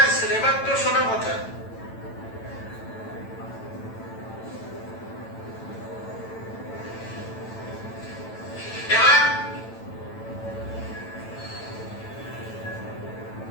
আসছিল, এবার তো শোনার কথা।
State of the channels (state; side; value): late; right; 9.0 ms